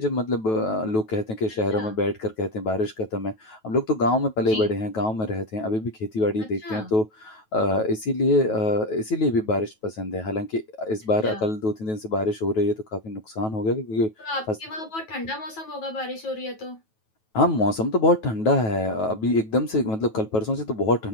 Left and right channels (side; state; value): right; late; 9.2 ms